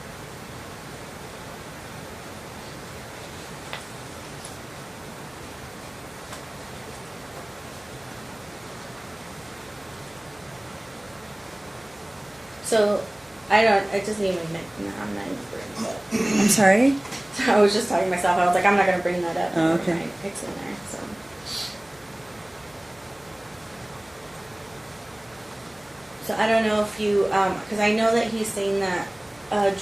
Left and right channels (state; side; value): noise; right; hum, 29 dB below the sound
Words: So it doesn't even I'm not even bringing it up. I'm sorry? I was just talking to myself. I was like, I'm not going to bring that up. Oh, okay. It's in there, so. So I don't know if you, because I know that he's saying that